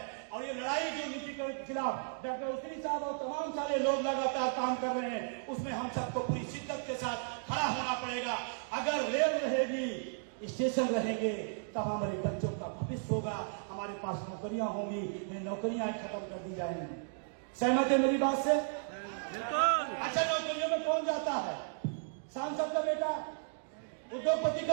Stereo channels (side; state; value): left; silent; digital silence